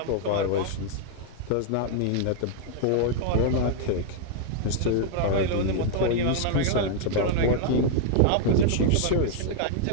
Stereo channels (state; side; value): different; both; correlation 0.00